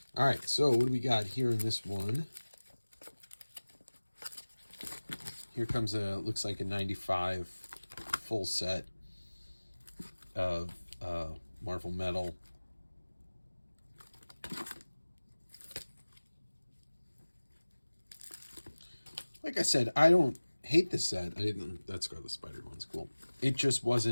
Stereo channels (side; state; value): both; inverted; correlation -1.00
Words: All right, so what do we got here in this one? Here comes looks like a 95 full set of Marvel Metal. Like I said, I don't hate this set. That Scarlet Spider one's cool. It just